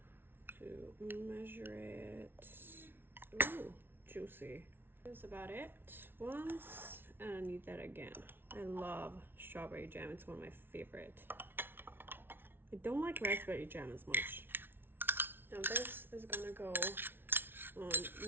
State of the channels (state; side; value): late; left; 0.11 ms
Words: To measure it. Ooh. Juicy. That's about it once, and I need that again. I love strawberry jam. It's one of my favorite. I don't like raspberry jam as much. Now this is gonna go